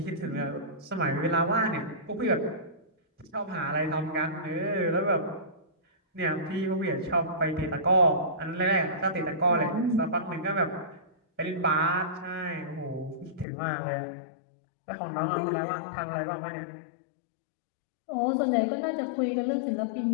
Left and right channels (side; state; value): right; drops out; at 13.5 s